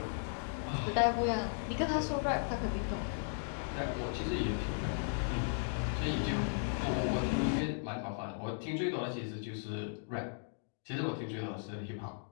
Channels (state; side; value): silent; right; digital silence